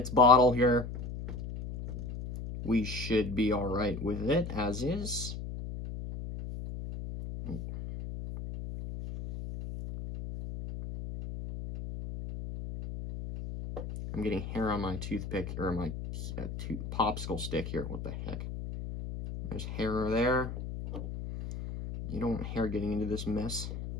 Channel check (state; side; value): noise; left; hum, 7 dB below the sound